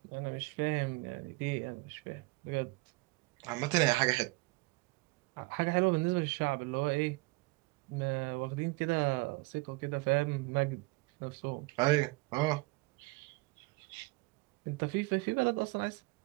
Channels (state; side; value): quieter; left; 25.3 dB